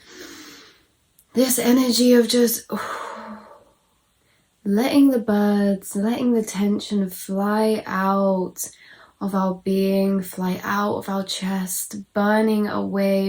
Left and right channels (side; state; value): both; identical; correlation 1.00